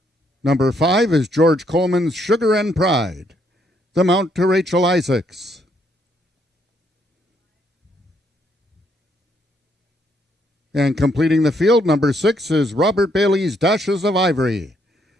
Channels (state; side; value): normal; both; correlation 0.72